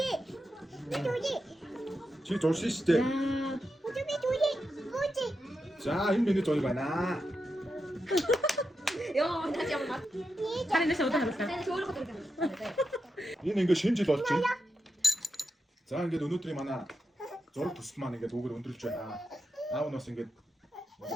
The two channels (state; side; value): normal; both; correlation 0.87